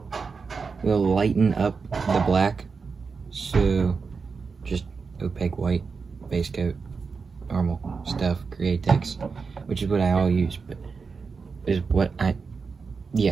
lighten up the black. So just opaque white base coat, normal stuff, Createx, which is what I all use, but is what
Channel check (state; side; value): quieter; left; 5.0 dB